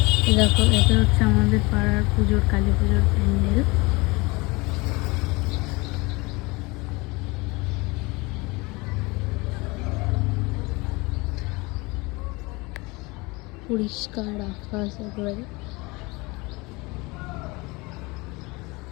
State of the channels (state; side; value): quieter; right; 25.0 dB